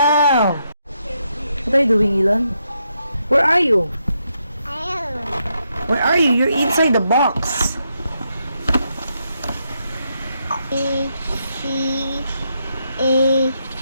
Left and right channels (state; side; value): inverted; both; correlation -0.80